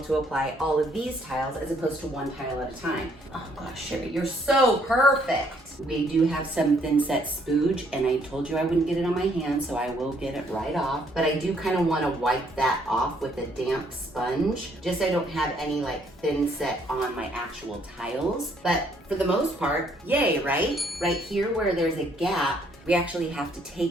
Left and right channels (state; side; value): normal; both; correlation 0.67